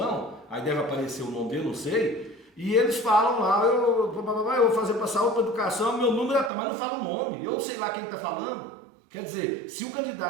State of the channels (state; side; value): drops out; left; at 6.5 s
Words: aí deve aparecer o nome dele, não sei. E eles falam lá, eu vou fazer para saúde, para educação, meu número é tal, mas não fala o nome. Eu sei lá quem está falando. Quer dizer, se o